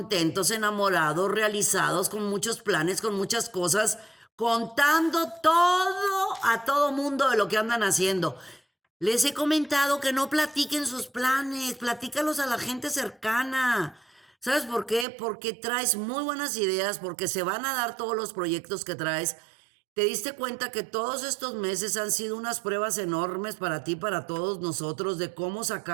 enamorados, realizados, con muchos planes, con muchas cosas, contando todo a todo mundo de lo que andan haciendo. Les he comentado que no platiquen sus planes, platícalos a la gente cercana. ¿Sabes por qué? Porque traes muy buenas ideas, porque se van a dar todos los proyectos que traes. ¿Te diste cuenta que todos estos meses han sido unas pruebas enormes para ti, para todos nosotros, de cómo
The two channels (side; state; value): left; drops out; at 15.1 s